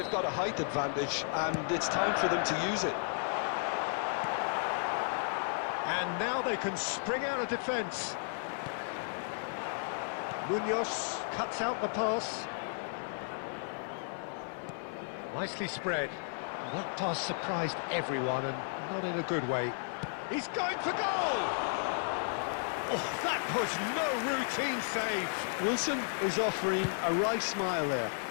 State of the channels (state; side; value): silent; right; 55 dB below the other